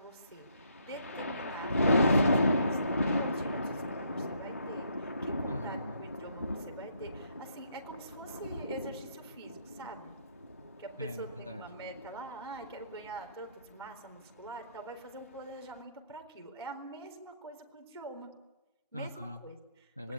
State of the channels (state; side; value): inverted; both; correlation -0.70